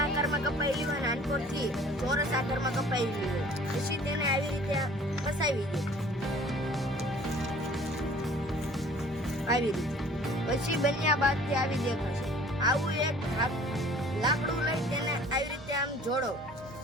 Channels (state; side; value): normal; both; correlation 0.51